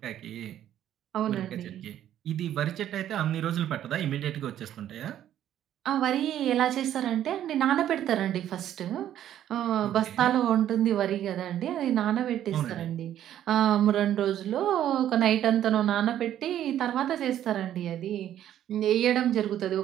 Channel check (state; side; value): quieter; left; 11.3 dB